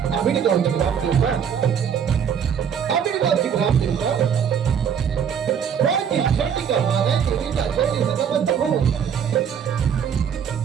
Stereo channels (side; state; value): left; quieter; 7.8 dB